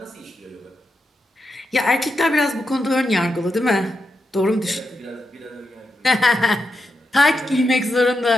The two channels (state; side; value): normal; both; correlation 0.86